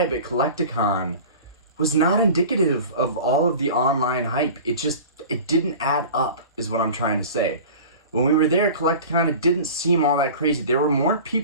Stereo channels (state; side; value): inverted; both; correlation -0.38